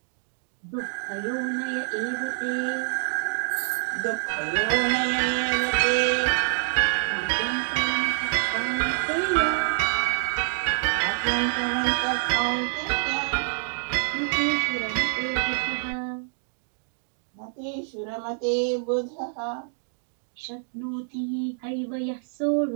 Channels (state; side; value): silent; left; digital silence